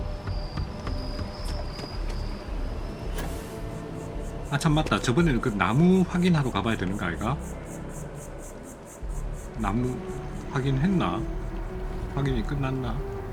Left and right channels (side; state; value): both; identical; correlation 1.00